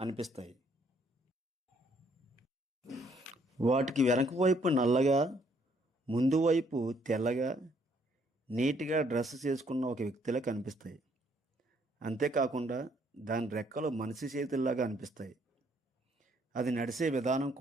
వాటికి వెనక వైపు నల్లగా, ముందు వైపు తెల్లగా, నీట్గా డ్రెస్ చేసుకున్న ఒక వ్యక్తిలా కనిపిస్తాయి. అంతేకాకుండా దాని రెక్కలు మనిషి చేతుల్లాగా అనిపిస్తాయి. అది నడిచే విధానం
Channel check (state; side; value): normal; both; correlation 0.67